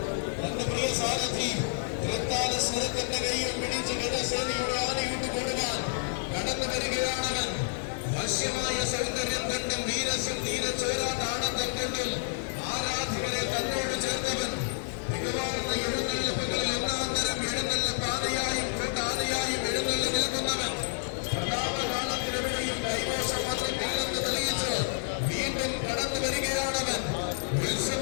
തന്റെ പ്രിയ സാരഥി തൃത്താല സ്വരത്തിന്റെ കയ്യിൽ പിടിച്ച് ഗജസേനയുടെ ആനയിട്ട് കൊടുക്കാൻ കടന്നു വരികയാണവൻ. വശ്യമായ സൗന്ദര്യം കണ്ടും വീരസ്യം നീരച്ചോരാട്ടാണത്തം കൊണ്ടും ആരാധകരെ തന്നോട് ചേർത്തവൻ. മികവാർന്ന എഴുന്നള്ളിപ്പുകളിൽ ഒന്നാം തരം എഴുന്നള്ളിപ്പാതയായും കൂട്ടാനയായും എഴുന്നള്ളി നിൽക്കുന്നവൻ. പ്രതാപകാലത്തിനെവിടെയും കൈമോശമാത്രത്തില്ലെന്ന് തെളിയിച്ച് വീണ്ടും കടന്നു വരികയാണവൻ. ഉത്സവ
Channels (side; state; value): right; silent; 58 dB below the other